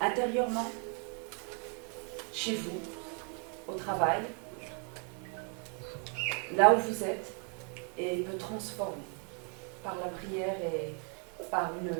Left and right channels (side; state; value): left; quieter; 39.8 dB